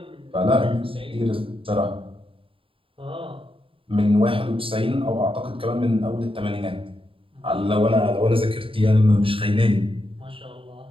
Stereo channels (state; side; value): late; left; 0.26 ms